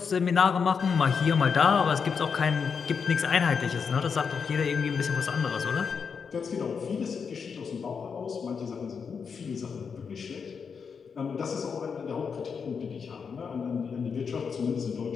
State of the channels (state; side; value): quieter; right; 6.0 dB